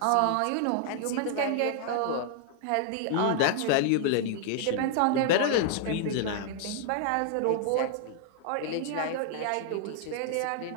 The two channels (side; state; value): both; different; correlation 0.00